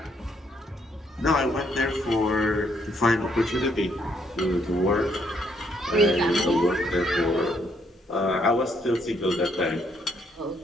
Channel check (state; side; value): normal; both; correlation 0.71